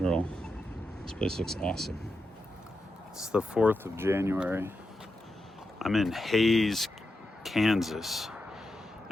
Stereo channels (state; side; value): normal; both; correlation 0.88